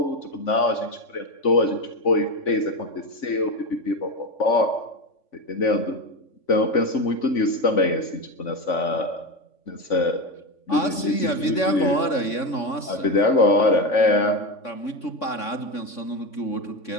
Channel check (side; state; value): right; late; 3.5 ms